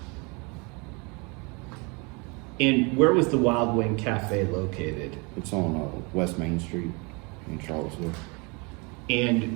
And where was the Wild Wing Cafe located? It's on West Main Street in Charlottesville.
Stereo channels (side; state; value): left; quieter; 29.9 dB